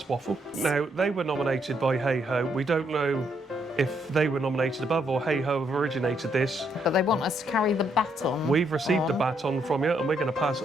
waffle. Now, they were nominated by Hey Ho. We don't know if they were nominated above or Hey Ho have originated this. But they want us to carry the baton. We've received a on. baton from you, and we're going to pass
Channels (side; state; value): both; normal; correlation 0.74